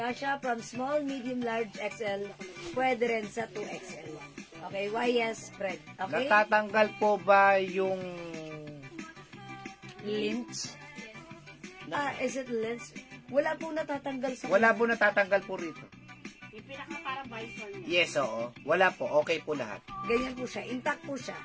from small, medium, large, XL. Pwede rin sa 2XL. Okay, YS spread. Okay? Natatanggal po ba yung... Lynch. Is it lynch? Wala pong natatanggal sa... Wala po natatanggal po rito. Yung pinaka para visor niya. Yes, oo. Wala po. Okay po lahat. Ganyan po siya. Intact po siya.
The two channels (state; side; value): identical; both; correlation 1.00